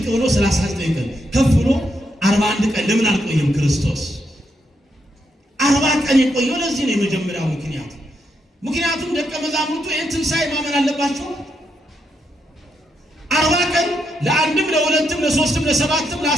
ብሎ 39 ቀን ከፍ ብሎ 41 ቀን ለምን አልቆየም? ክርስቶስ 40 ቀን የቆየው ለዚህ ነው። የመጀመሪያው ምክንያት ምክንያቱም ደቀ መዛሙርቱ ይህን ትንሣኤ ማመን አለባቸው። 40 ቀን ለአንድም ለሁለትም ለሶስትም ለሰባትም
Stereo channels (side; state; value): both; normal; correlation 0.80